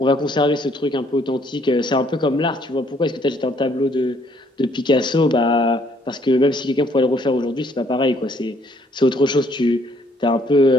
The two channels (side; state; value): both; normal; correlation 0.65